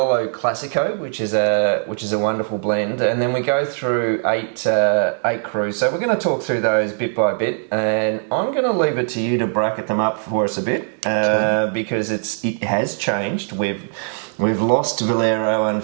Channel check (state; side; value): silent; left; digital silence